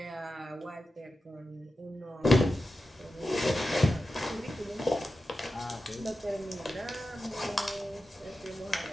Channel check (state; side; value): normal; both; correlation 0.92